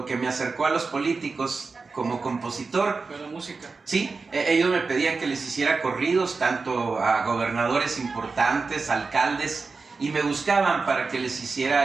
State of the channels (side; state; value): left; quieter; 4.3 dB